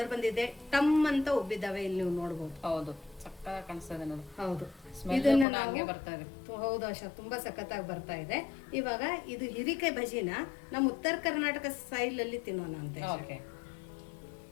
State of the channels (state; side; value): drops out; right; at 5.5 s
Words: ಬಂದಿದೆ, ಟಮ್ ಅಂತ ಉಬ್ಬಿದಾವೆ. ಇಲ್ಲಿ ನೀವು ನೋಡ್ಬೋದು. ಹೌದು, ಸಕ್ಕತ್ತಾಗಿ ಕಾಣಿಸ್ತದೆ ನೋಡಿ. ಹೌದು, ಇದನ್ನ ಹಂಗೆ ಬರ್ತಾ ಇದೆ. ಹೌದು ಆಶಾ, ತುಂಬಾ ಸಖತ್ತಾಗಿ ಬರ್ತಾ ಇದೆ. ಇವಾಗ ಇದು ಹಿರಿಕಾಯಿ ಬಜಿನ ನಮ್ಮ ಉತ್ತರ ಕರ್ನಾಟಕ ಸ್ಟೈಲ್ ಅಲ್ಲಿ ತಿನ್ನೋಣ ಅಂತ. ಓಕೆ